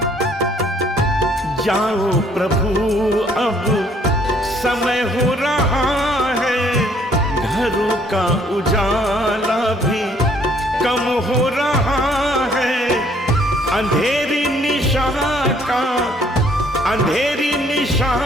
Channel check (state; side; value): normal; both; correlation 0.63